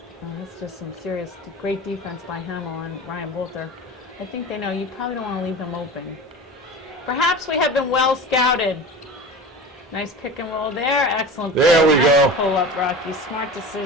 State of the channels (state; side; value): normal; both; correlation 0.33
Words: Oh, that's just some serious, great defense by Hamill and Ryan Bolter. I think they know you probably don't want to leave them open. Perhaps we have been well scouted. Nice pick and roll there. Excellent. There we Nice go. Pull up, Rocky. Smart